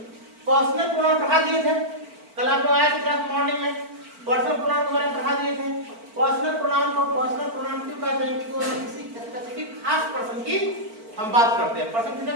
पर्सनल प्रोनाउन पढ़ा दिए थे कल आप लोग आए थे क्लास मॉर्निंग में, पर्सनल प्रोनाउन के बारे में पढ़ा दिए थे। पर्सनल प्रोनाउन को पर्सनल प्रोनाउन क्यों कहते हैं? क्योंकि वो किसी स्पेसिफिक खास पर्सन की हम बात करते हैं। पर्सन कितने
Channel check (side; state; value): left; late; 4.5 ms